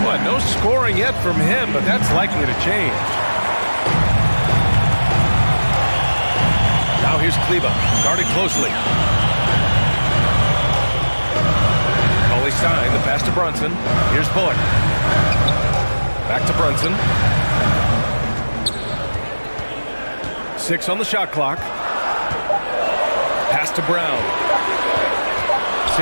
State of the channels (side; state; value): both; inverted; correlation -1.00